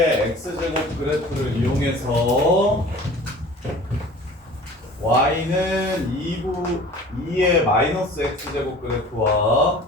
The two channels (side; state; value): both; normal; correlation 0.44